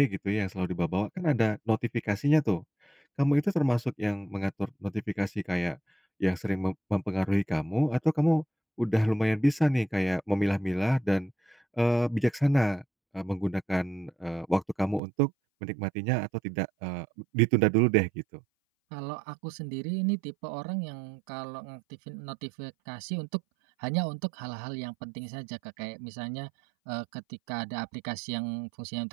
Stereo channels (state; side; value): drops out; left; at 15.0 s